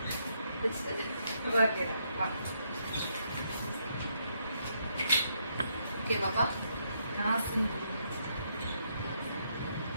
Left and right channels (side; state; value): both; inverted; correlation -0.76